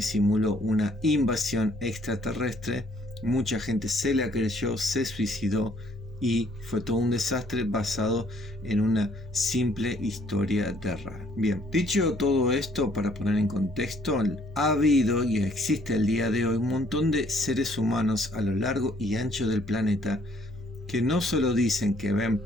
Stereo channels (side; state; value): both; normal; correlation 0.63